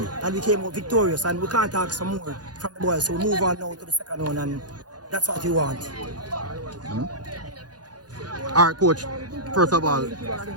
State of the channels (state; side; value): late; left; 0.69 ms